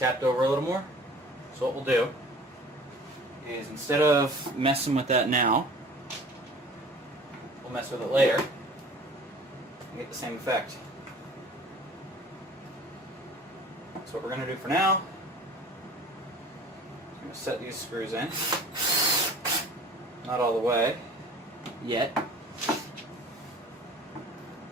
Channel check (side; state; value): both; normal; correlation 0.46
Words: over a little more. So what we'll do is, instead of messing with that now, we'll mess with it later and get the same effect. That's what we're going to do for now. I'm going to set these screws in. Not all the way yet.